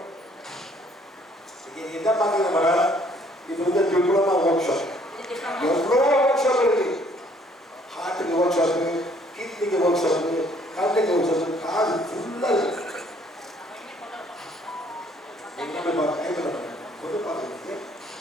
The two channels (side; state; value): both; normal; correlation 0.62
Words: இது என்ன பாத்தீங்க மேடம்? இது வந்து டிப்ளமா ஒர்க் ஷாப். எவ்வளோ ஒர்க் ஷாப் இருக்கு. ஹார்ட்டுக்கு ஒர்க் ஷாப், கிட்னிக்கு ஒர்க் ஷாப்,